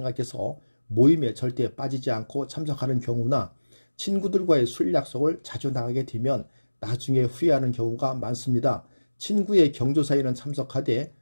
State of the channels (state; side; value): inverted; both; correlation -1.00